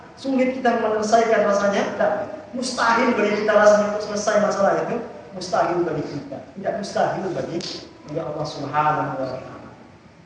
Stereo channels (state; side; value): identical; both; correlation 1.00